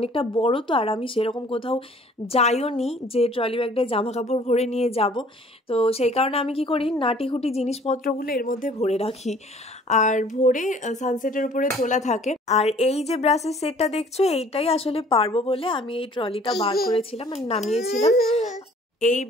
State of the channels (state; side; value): normal; both; correlation 0.54